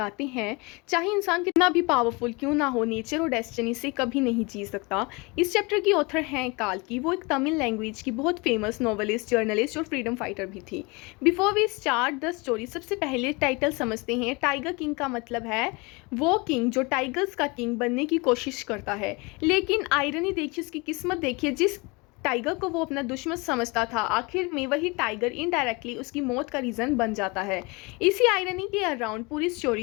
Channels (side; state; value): right; quieter; 27.2 dB